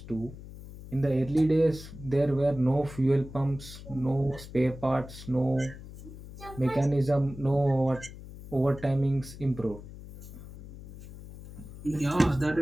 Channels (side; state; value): left; noise; hum, 15 dB below the sound